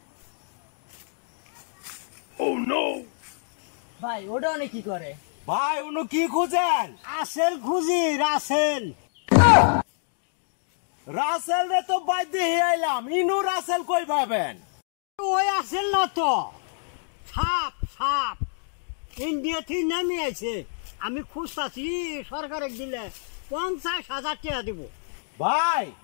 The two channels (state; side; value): silent; right; digital silence